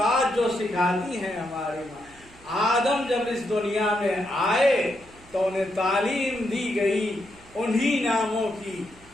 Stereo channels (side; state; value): right; noise; hum, 24 dB below the sound